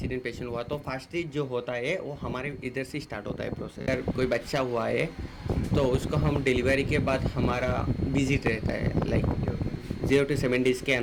पेशेंट हुआ, तो फर्स्ट स्टेज जो होता है वो हमारे इधर से स्टार्ट होता है प्रोसेस। अगर कोई बच्चा हुआ है तो उसको हम डिलीवरी के बाद हमारा विजिट रहता है, लाइक 0 to 7 डेज़ के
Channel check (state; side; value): identical; both; correlation 1.00